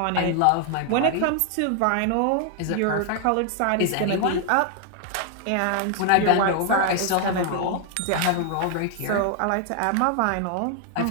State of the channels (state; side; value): different; both; correlation 0.00